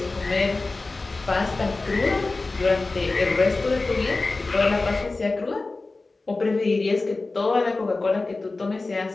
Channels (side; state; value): right; quieter; 3.4 dB